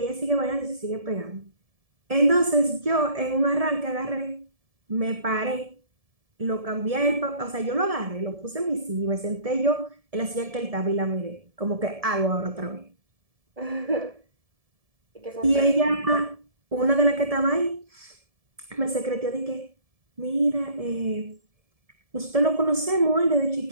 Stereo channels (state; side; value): late; left; 1.7 ms